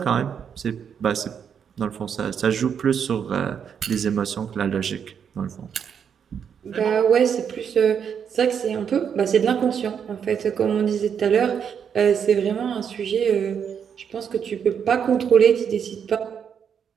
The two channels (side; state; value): left; quieter; 7.6 dB